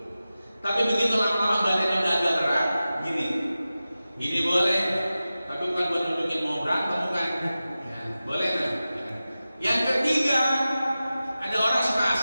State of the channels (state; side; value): inverted; both; correlation -0.95